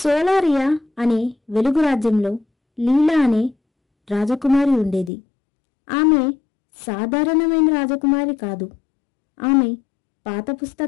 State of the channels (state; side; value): drops out; right; at 5.1 s